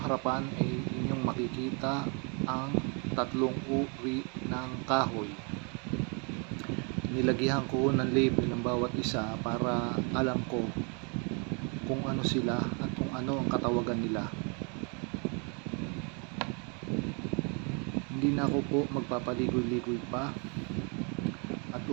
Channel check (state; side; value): quieter; left; 35.9 dB